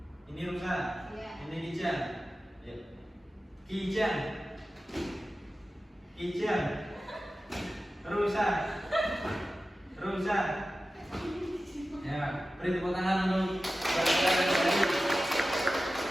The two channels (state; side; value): normal; both; correlation 0.94